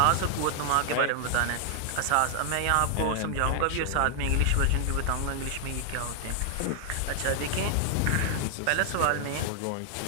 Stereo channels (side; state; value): both; different; correlation 0.00